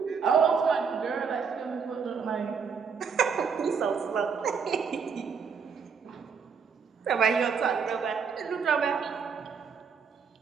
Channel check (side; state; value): left; quieter; 6.1 dB